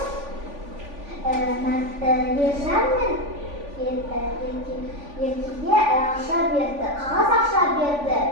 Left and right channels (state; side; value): late; left; 3.5 ms